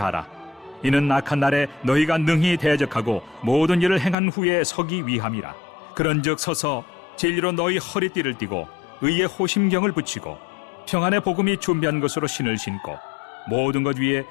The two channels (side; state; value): right; drops out; at 4.2 s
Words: 이는 악한 날에 너희가 능히 대적하고 모든 일을 행한 후에 서기 위함이라. 그런즉 서서 진리로 너희 허리띠를 띠고 의의 호심경을 붙이고 평안의 복음이 준비한 것으로 신을 신고 모든 것 위에